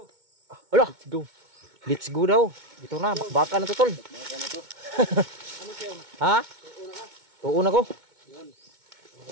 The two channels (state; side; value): late; left; 2.2 ms